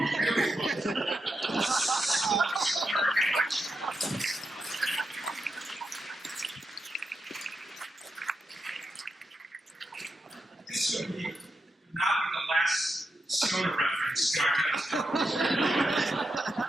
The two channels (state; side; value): normal; both; correlation 0.86